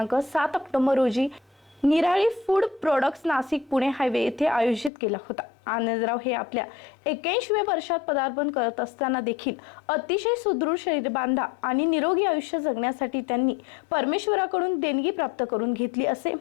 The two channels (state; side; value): drops out; right; at 4.9 s